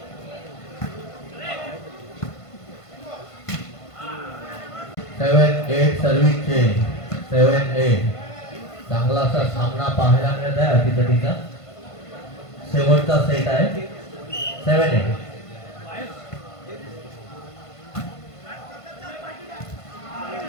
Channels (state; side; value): late; right; 1.5 ms